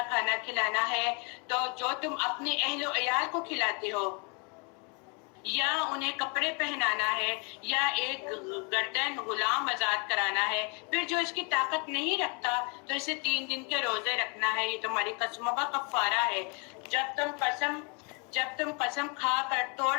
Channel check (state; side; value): quieter; right; 34.1 dB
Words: کھانا کھلانا ہے. تو جو تم اپنے اہل و عیال کو کھلاتے ہو یا انہیں کپڑے پہنانا ہے یا ایک گردن غلام آزاد کرانا ہے، پھر جو اس کی طاقت نہیں رکھتا تو اسے 3 دن کے روزے رکھنا ہے. یہ تمہاری قسموں کا کفارہ ہے. جب تم قسم کھا کر توڑ